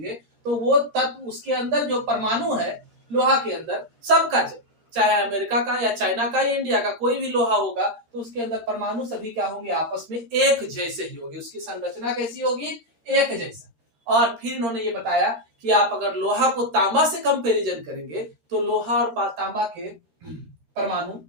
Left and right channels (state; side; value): late; left; 13 ms